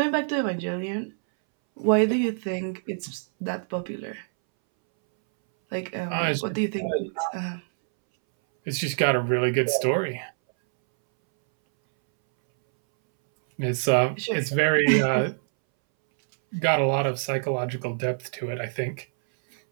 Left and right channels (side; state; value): left; silent; 61 dB below the other